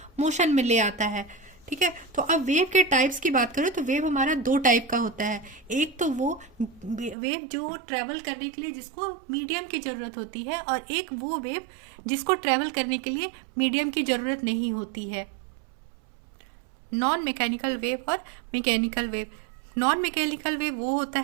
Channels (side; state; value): left; drops out; at 7.2 s